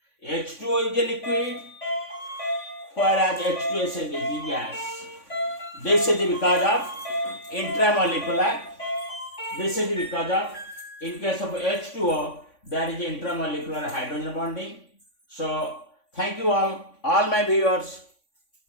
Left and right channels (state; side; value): late; right; 3.5 ms